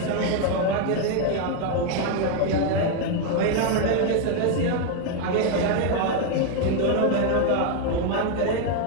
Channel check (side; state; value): both; different; correlation 0.01